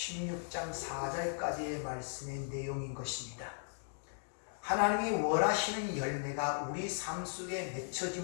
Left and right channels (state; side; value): silent; right; digital silence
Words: 4절까지의 말씀의 내용인 것입니다. 하나님이 원하시는 열매가 우리 삶 속에